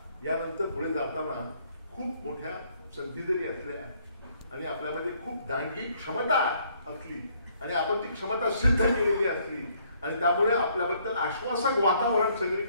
यानंतर पुढे जाताना खूप मोठ्या संधी जरी असल्या आणि आपल्यामध्ये खूप दांडगी क्षमता असली आणि आपण ती क्षमता सिद्ध केलेली असली आणि त्यामुळे आपल्याबद्दल आश्वासक वातावरण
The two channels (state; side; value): inverted; both; correlation -0.66